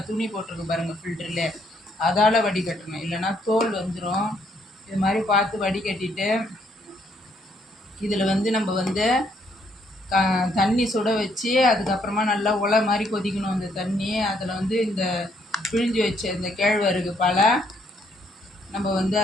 துணி போட்டிருக்கு பாருங்கள் ஃபில்டரில். அதால் வடிகட்டணும், இல்லைன்னா தோல் வந்துடும். இது மாதிரி பார்த்து வடிகட்டிட்டு இதில் நம்ம தண்ணி சுட வச்சு அதுக்கப்புறமா நல்லா உலை மாதிரி கொதிக்கணும் அந்த தண்ணி. அதில் இந்த பிழிஞ்சு வச்ச இந்த கேழ்வரகு பாலை நம்ம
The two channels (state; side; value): normal; both; correlation 0.71